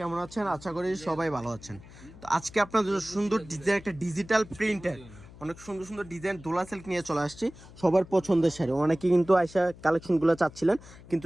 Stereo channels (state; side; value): noise; left; hum, 20 dB below the sound